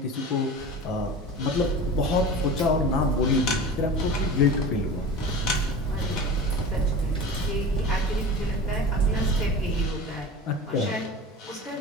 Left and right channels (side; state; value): both; normal; correlation 0.34